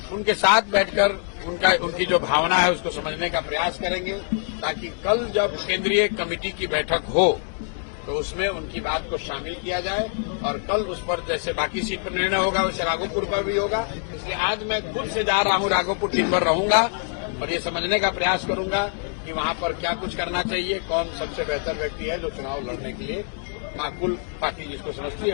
उनके साथ बैठकर उनकी जो भावना है उसको समझने का प्रयास करेंगे, ताकि कल जब केंद्रीय कमेटी की बैठक हो तो उसमें उनकी बात को शामिल किया जाए और कल उस पर जैसे बाकी सीट पर निर्णय होगा वैसे राघोपुर पर भी होगा। इसलिए आज मैं खुद से जा रहा हूं, राघोपुर दिन भर रहूंगा और ये समझने का प्रयास करूंगा कि वहां पर क्या कुछ करना चाहिए, कौन सबसे बेहतर व्यक्ति है जो चुनाव लड़ने के लिए माकूल पार्टी जिसको समझती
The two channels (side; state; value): right; silent; 57 dB below the other